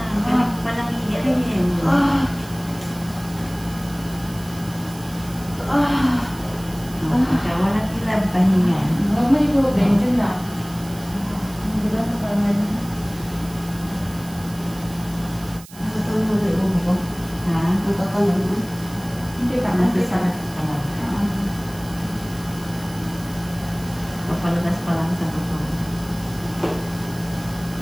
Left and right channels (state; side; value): noise; right; hiss, 19 dB below the sound